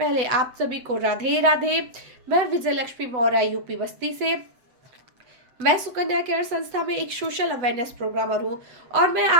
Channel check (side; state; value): left; late; 8.0 ms